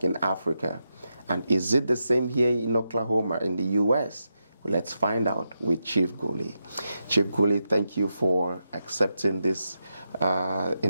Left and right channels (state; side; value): inverted; both; correlation -0.87